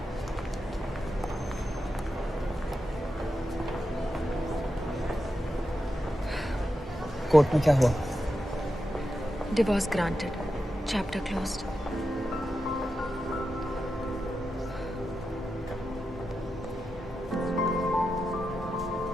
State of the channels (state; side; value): normal; both; correlation 0.89